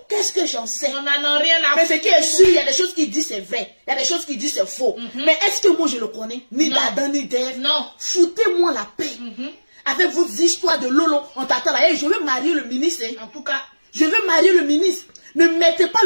Qu'est-ce que j'en sais? On n'en a rien à mais ce qui est sûr, il y a des choses qui disent c'est vrai, il y a des choses qui disent c'est faux. Mais est-ce que moi je le connais? Ni d'Adam ni d'Ève. Non. Foutez-moi la paix. Avec vos histoires de Lolo, on t'attend là. Hey, je veux marier le ministre. Hein. En tout cas, je veux marier le ministre. Ne mettez pas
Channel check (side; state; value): both; inverted; correlation -1.00